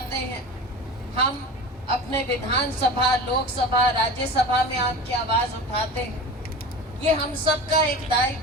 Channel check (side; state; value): both; normal; correlation 0.33